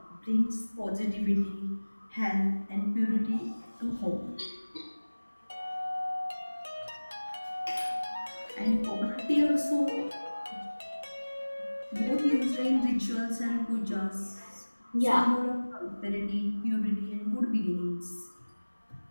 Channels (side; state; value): both; inverted; correlation -1.00